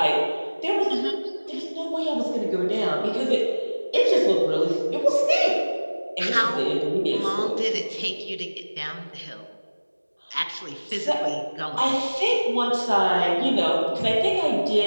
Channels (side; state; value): both; inverted; correlation -1.00